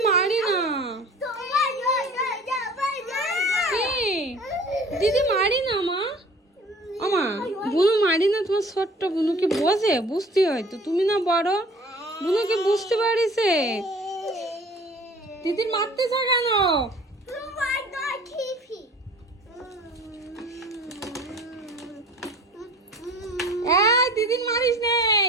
মারি না। কি দিদি মারি না মা? আমা বুনু মারি না, তোমার ছোট্ট বুনুকে বোঝে, বুঝতে হয়তো, তুমি না বড়, বুনুকে বুঝতে পারিছে। দিদির মারতেছ কেন? দিদির মারিস নেই।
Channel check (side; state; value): both; normal; correlation 0.47